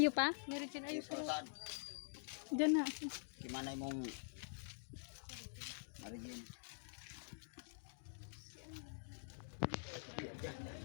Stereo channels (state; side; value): silent; right; digital silence